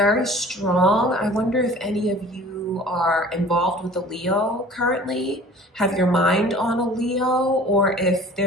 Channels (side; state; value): both; normal; correlation 0.46